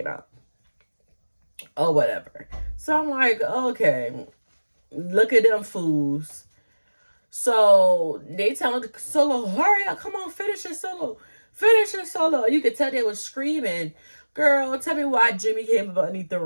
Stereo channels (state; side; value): inverted; both; correlation -1.00